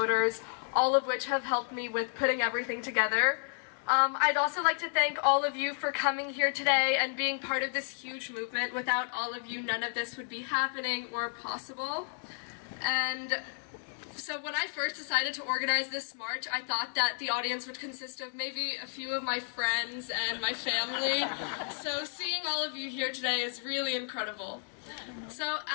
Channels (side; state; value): right; silent; 56 dB below the other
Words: all of which have helped me with putting everything together. I'd also like to thank all of you for coming here today and being part of this huge movement. Without all of you, none of this would be happening or possible. And so when I first decided to organize this march, I thought that the audience would consist of maybe a few of my friends and my family. So seeing all of you here today is really incredible. So